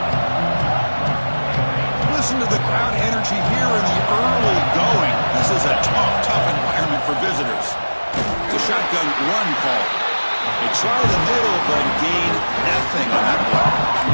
Listen to the crowd energy here in the early going. This is a tough environment for visitors. It's a shotgun run call. They try the middle, but gain nothing on that play.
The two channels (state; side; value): inverted; both; correlation -1.00